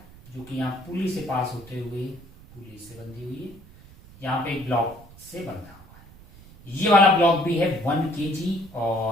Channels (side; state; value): right; noise; rumble, 21 dB below the sound